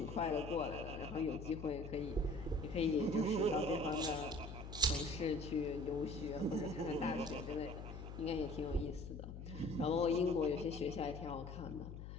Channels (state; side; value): noise; left; hum, 9 dB below the sound